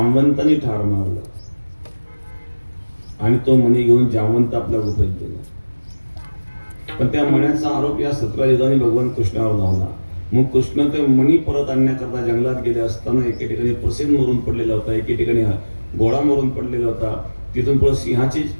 ठार मारलं, आणि तो मणी घेऊन जामवंत आपल्या गुफेत गेला. पण त्या मण्याचा आरोप या सत्राजिताने भगवान कृष्णावर झाला. मग कृष्ण ते मणी परत आणण्याकरता जंगलात गेले असताना एके ठिकाणी प्रसेन मरून पडलेला होता, एके ठिकाणी घोडा मरून पडलेला होता. तिथून पुढे सिंहाचे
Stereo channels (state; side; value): inverted; both; correlation -1.00